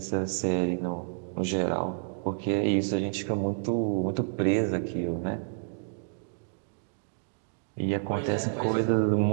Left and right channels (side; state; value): left; silent; digital silence